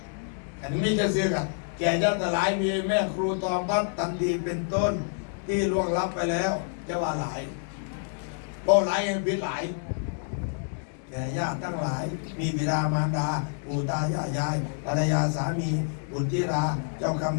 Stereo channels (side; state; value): right; silent; digital silence